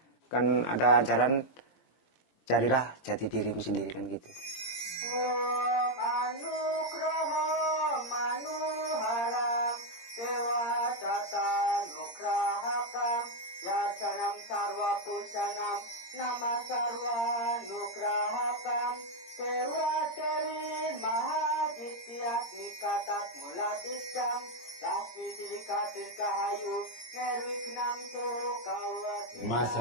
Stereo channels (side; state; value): right; late; 17 ms